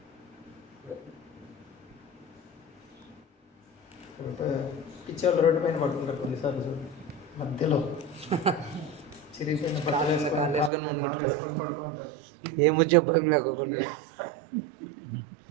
పిచ్చోళ్ళు రోడ్డు పైన పడుతుంటారు కొన్నిసార్లు, చూడు మధ్యలో చిరిగిపోయిన బట్టలు వేసుకొని పడుకుంటారు. ఏమో చెప్పడం లేకుండా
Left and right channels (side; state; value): left; drops out; at 10.7 s